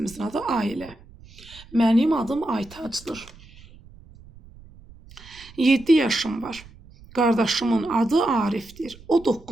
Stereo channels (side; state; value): right; noise; rumble, 22 dB below the sound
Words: adı Ailə. Mənim adım Aytacdır. 7 yaşım var. Qardaşımın adı Arifdir. O